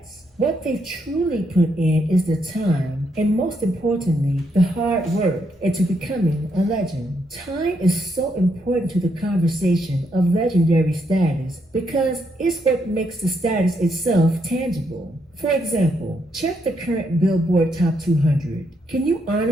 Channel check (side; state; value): both; normal; correlation 0.77